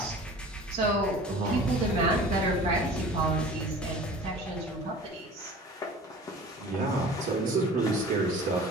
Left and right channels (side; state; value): both; normal; correlation 0.42